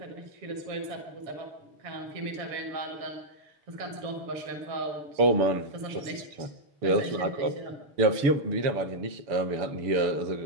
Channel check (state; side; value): late; left; 7.0 ms